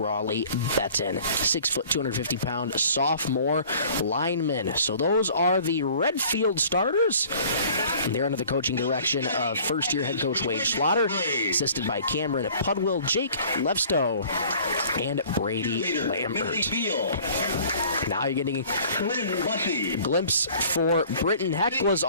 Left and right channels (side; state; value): both; inverted; correlation -0.50